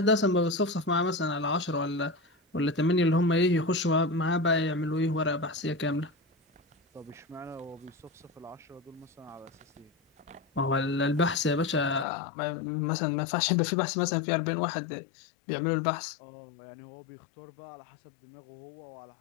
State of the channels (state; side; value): drops out; right; at 12.1 s